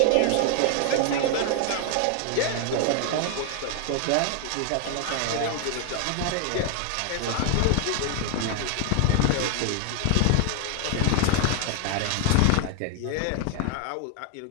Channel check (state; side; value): different; both; correlation 0.00